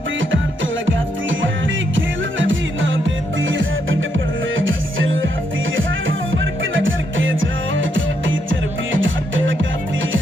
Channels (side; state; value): both; normal; correlation 0.78